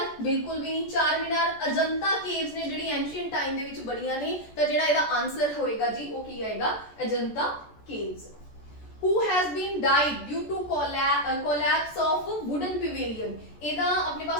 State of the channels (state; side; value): late; right; 14 ms